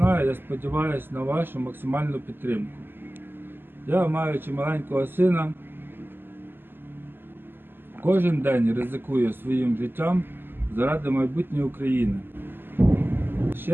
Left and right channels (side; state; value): left; late; 0.097 ms